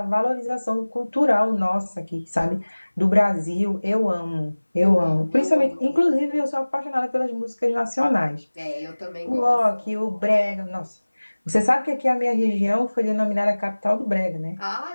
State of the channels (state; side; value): inverted; both; correlation -1.00